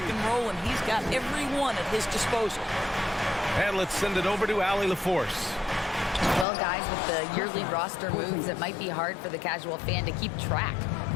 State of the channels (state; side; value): drops out; right; at 6.5 s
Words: and roll, and he's got every one at his disposal. And let's send it over to Allie LaForce. Well, guys, with the yearly roster moves, it might be hard for the casual fan to keep track.